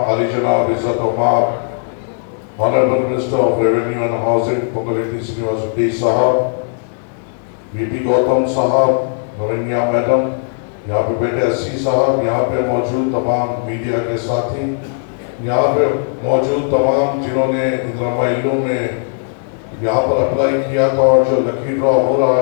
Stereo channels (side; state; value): right; silent; digital silence